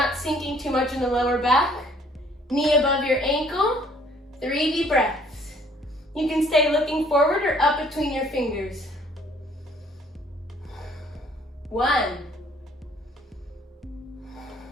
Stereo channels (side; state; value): both; normal; correlation 0.60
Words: sinking too much in the lower back. Knee above your ankle, 3 deep breaths. You can stay looking forward or up between your fingers. 1,